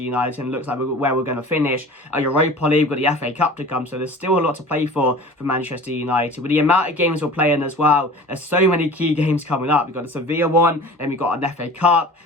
United and looks like where we're going to finish. Our Europa League, we've got the FA Cup to come. So there's still a lot to play for Manchester United. With the amount of games we're playing as well, there's so many key games coming up. We've got the Sevilla one, then we've got an FA Cup.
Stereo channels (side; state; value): both; normal; correlation 0.41